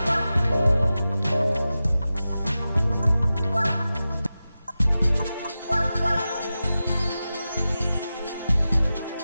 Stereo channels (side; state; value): both; inverted; correlation -0.93